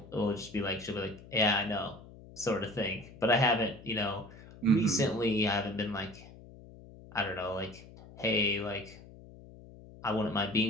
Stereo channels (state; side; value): noise; left; hum, 19 dB below the sound